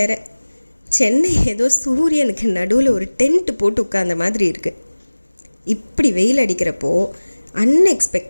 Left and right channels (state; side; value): inverted; both; correlation -1.00